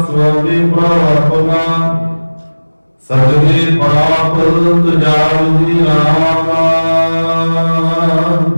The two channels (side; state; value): both; inverted; correlation -1.00